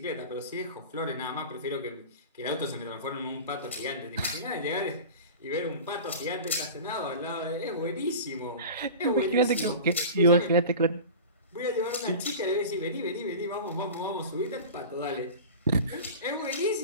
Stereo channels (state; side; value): inverted; both; correlation -0.34